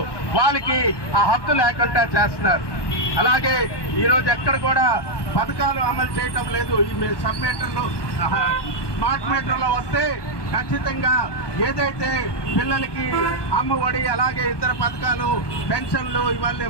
వాళ్ళకి ఆ హక్కు లేకుండా చేస్తున్నారు. అలాగే ఈరోజు ఎక్కడ కూడా పథకాలు అమలు చేయటం లేదు. ఈ సబ్ మీటర్లు స్మార్ట్ మీటర్లో వస్తే ఖచ్చితంగా ఏదైతే పిల్లలకి అమ్మ ఒడి అలాగే ఇతర పథకాలు పెన్షన్లు ఇవన్నీ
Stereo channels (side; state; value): right; late; 1.2 ms